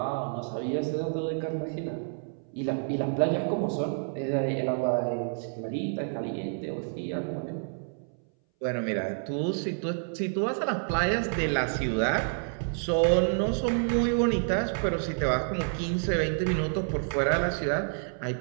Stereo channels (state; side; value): silent; left; 59 dB below the other